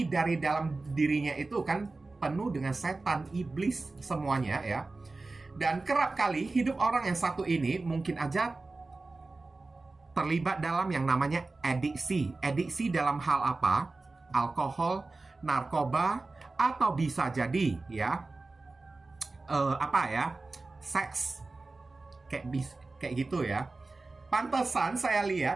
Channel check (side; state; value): left; quieter; 3.5 dB